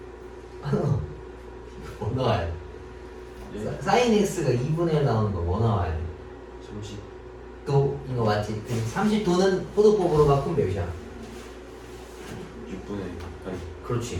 뭐 나와야 돼? 사인 x가 2분의 1 나오는 거 뭐 나와야 돼? 30. 또 이거 맞지? 30도는 포도법으로 바꾸면 몇이야? 6분의 8. 그렇지.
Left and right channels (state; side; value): identical; both; correlation 1.00